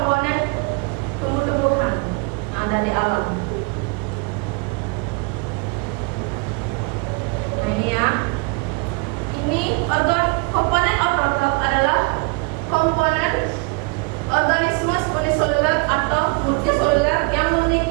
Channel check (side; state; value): left; quieter; 30.1 dB